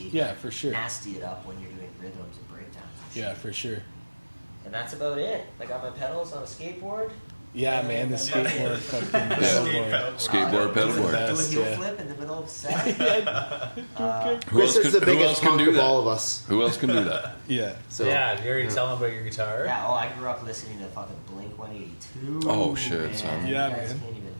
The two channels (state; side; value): inverted; both; correlation -1.00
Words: Yeah, for sure. Nasty it up when you're doing rhythms and breakdowns. And shit. Yeah, for sure. And that's about it. I got my pedals on a skateboard. Yeah, man, the skateboard fucking pedalboard. Skateboard, Do a pedalboard. Best, heel yeah. flip in the middle of set. Who Chris else is the can- who else biggest can punk do of that? all of us. Who else can do that? Yeah. So yeah, you already tell them about your guitar. Yeah, I grew up listening to fucking Blink 182. Oh, shit, man. son. You Yeah, guys man. can't even